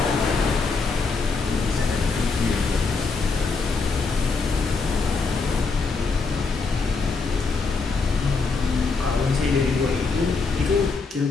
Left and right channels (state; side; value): quieter; right; 4.4 dB